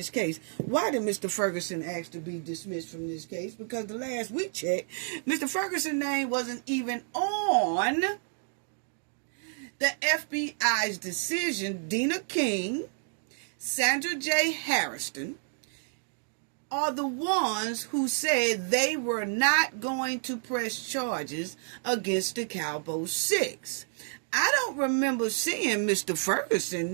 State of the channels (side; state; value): left; silent; 58 dB below the other